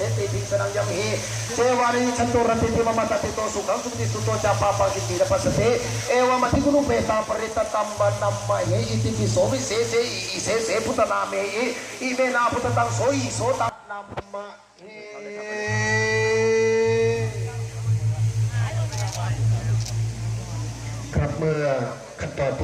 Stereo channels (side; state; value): both; identical; correlation 1.00